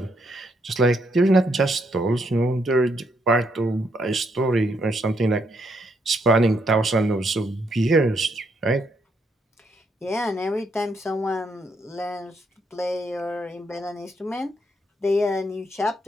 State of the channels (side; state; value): both; normal; correlation 0.75